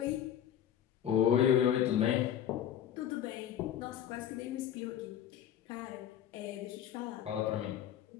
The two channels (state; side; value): quieter; right; 10.2 dB